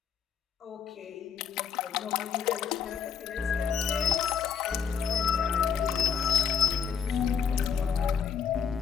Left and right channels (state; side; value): quieter; right; 7.0 dB